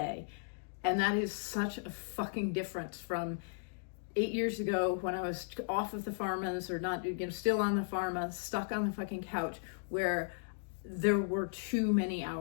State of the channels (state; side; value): silent; right; digital silence